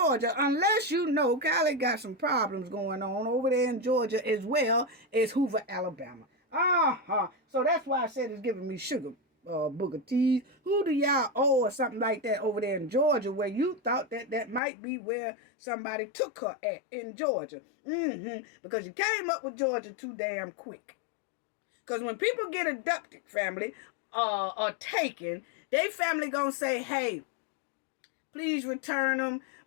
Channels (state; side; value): drops out; right; at 14.6 s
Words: Unless Carlee got some problems going on over there in Georgia as well as Hoover, Alabama. So that's why I said it's giving me sugar booger teas. Who do y'all owe or something like that over there in Georgia where you thought that might be where somebody took her at in Georgia? Because you came up with Georgia too damn quick. Because when people get abducted, family, or taken, they family gonna say, hey, please return them.